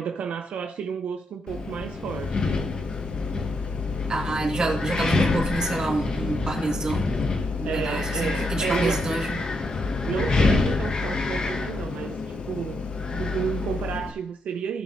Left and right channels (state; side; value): normal; both; correlation 0.79